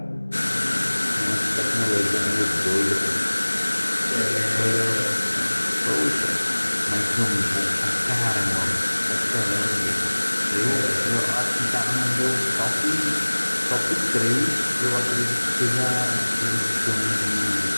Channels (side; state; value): both; inverted; correlation -1.00